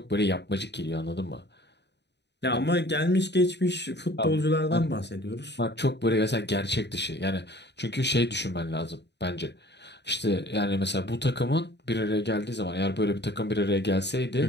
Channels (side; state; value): right; late; 0.50 ms